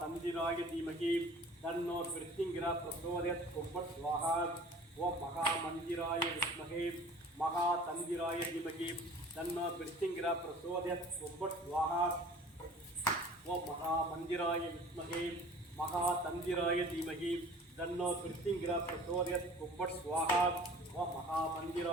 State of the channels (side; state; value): both; normal; correlation 0.46